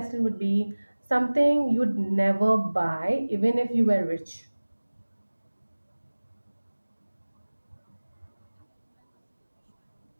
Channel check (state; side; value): inverted; both; correlation -1.00